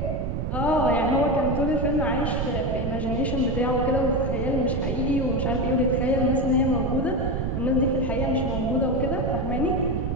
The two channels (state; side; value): noise; right; rumble, 1 dB below the sound